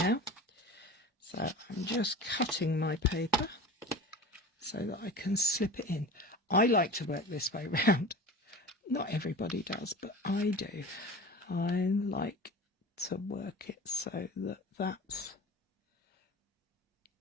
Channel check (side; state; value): both; normal; correlation 0.35